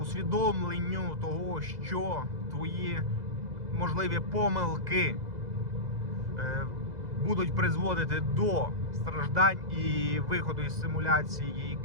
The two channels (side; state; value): left; late; 2.0 ms